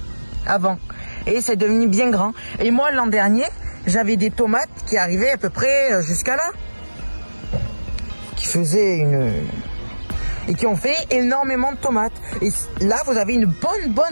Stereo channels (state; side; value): inverted; both; correlation -1.00